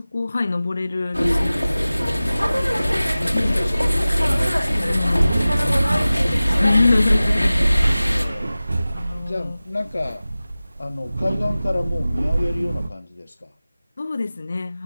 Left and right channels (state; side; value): inverted; both; correlation -0.97